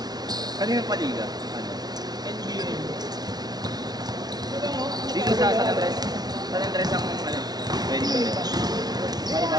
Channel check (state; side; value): late; left; 0.19 ms